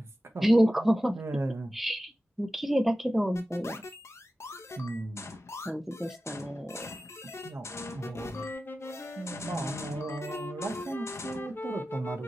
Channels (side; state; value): both; normal; correlation 0.94